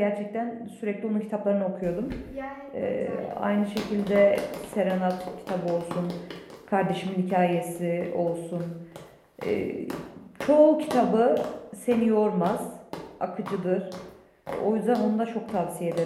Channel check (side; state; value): both; identical; correlation 1.00